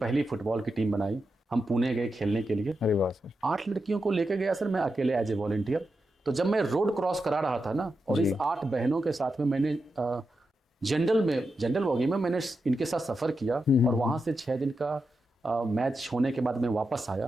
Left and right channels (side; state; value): both; normal; correlation 0.88